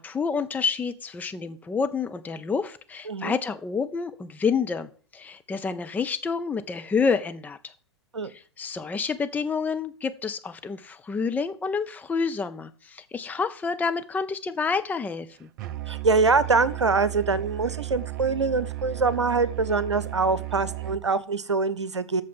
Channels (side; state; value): both; normal; correlation 0.31